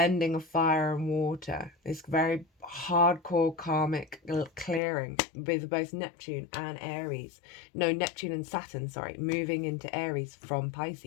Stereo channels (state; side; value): drops out; right; at 4.8 s